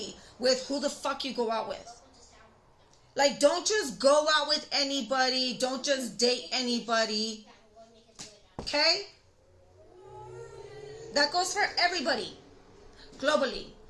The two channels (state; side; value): identical; both; correlation 1.00